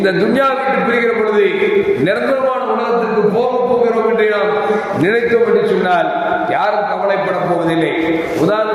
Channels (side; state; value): both; identical; correlation 1.00